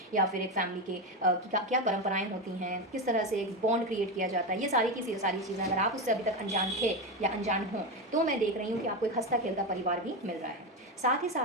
या फिर एक फैमिली के क्या परंपराएं होती हैं, किस तरह से एक बॉन्ड क्रिएट किया जाता है, ये सारी की सारी चीज़ें अगर आप उससे अभी तक अनजान थे या अनजान हों, तो मैं देख रही हूँ कि आपको एक हंसता खेलता परिवार भी मिल रहा है। साथ ही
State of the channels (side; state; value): both; normal; correlation 0.14